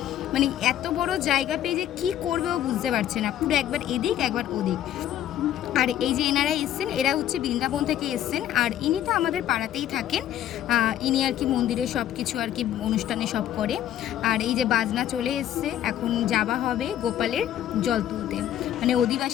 এত বড় জায়গা পেয়ে যে কী করবে ও বুঝতে পারছে না, পুরো একবার এদিক একবার ওদিক। আর এই যে এনারা এসছেন, এরা হচ্ছে বৃন্দাবন থেকে এসছেন। আর ইনি তো আমাদের পাড়াতেই থাকেন। ইনি আর কি মন্দিরে সব কিছু আর কি অনুষ্ঠানে সব করে। আর এই যে বাজনা চলে এসছে, এখন যাওয়া হবে গোপালের জল তুলতে,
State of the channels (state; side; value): quieter; right; 11.6 dB